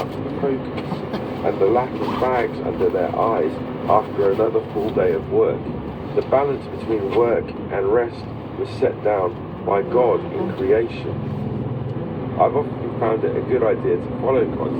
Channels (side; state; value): both; identical; correlation 1.00